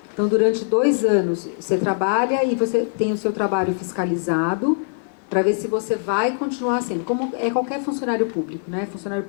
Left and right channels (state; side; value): silent; right; 58 dB below the other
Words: Então, durante 2 anos, você trabalha e você tem o seu trabalho fiscalizado para ver se você vai continuar sendo. Como é qualquer funcionário público, né? Funcionário